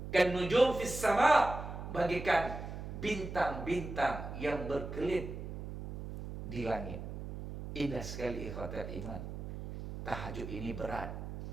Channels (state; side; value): noise; right; hum, 8 dB below the sound